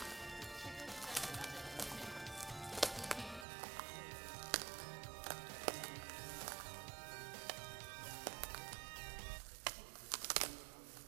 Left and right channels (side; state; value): left; drops out; at 3.5 s